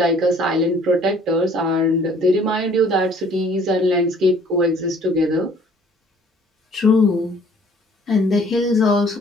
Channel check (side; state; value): both; normal; correlation 0.56